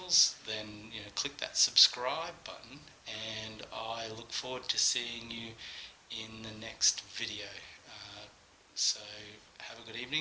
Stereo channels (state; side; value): identical; both; correlation 1.00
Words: then click that subscribe button, and I look forward to seeing you in the next video. So have a good